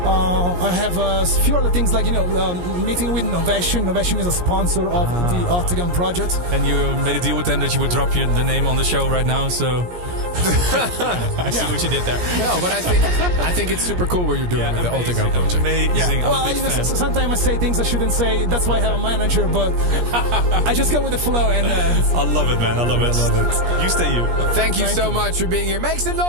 I have a few other things like meeting with Novation. Novation is a sponsor of the Octagon project. And you made a deal with them that you would drop the name on the show right now. So I see what you did there. No, but I think it's super cool what you're doing with the Octagon project. Amazing. Yeah. Well, sometimes I say things I shouldn't say. That's why I have a manager, but I just go with the flow. And I love it, man. I love it. You stay you. Thank you so much for being here. Make some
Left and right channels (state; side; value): late; left; 17 ms